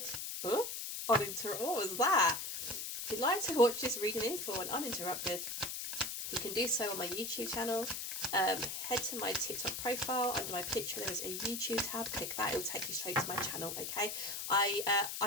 what was that? If you'd like to watch this reading in full and uninterrupted, you can do so on my YouTube channel. Head to my TikTok profile. Under my picture there is a YouTube tab. Click that, it will take you straight to my channel. Okay, I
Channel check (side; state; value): left; noise; hiss, 4 dB below the sound